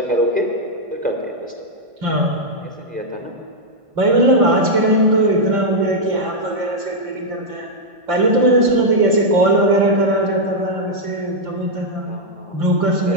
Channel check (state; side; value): late; left; 1.5 ms